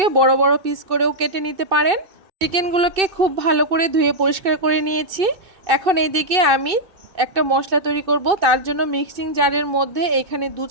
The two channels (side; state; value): left; late; 2.6 ms